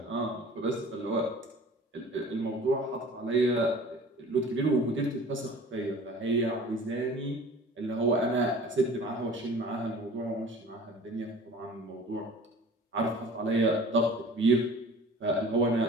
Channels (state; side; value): normal; both; correlation 0.44